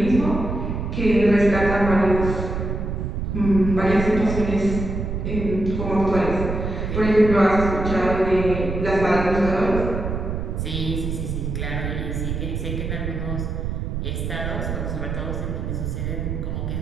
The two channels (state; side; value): noise; right; rumble, 3 dB below the sound